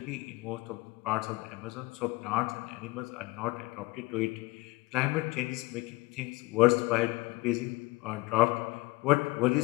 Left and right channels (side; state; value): right; quieter; 22.9 dB